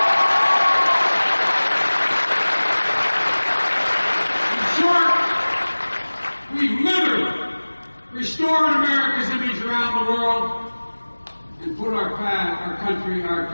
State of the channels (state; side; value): inverted; both; correlation -1.00